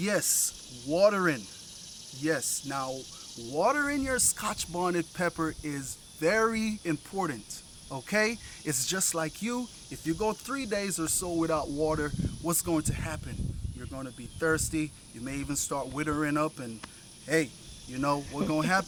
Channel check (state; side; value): identical; both; correlation 1.00